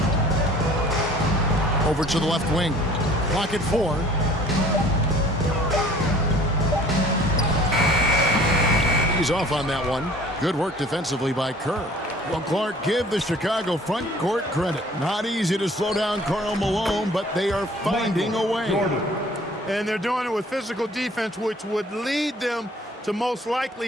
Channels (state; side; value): normal; both; correlation 0.51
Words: Over to the left wing. Clock at 4. He's off on that one. Good work defensively by Kerr. Well, Clark, give the Chicago front court credit. Not easy to slow down Karl Malone, but they are finding a way. And they're doing it with physical defense, which would lead them to most